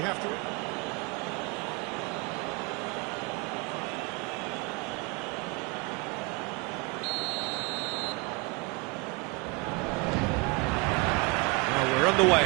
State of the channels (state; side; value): quieter; left; 27.7 dB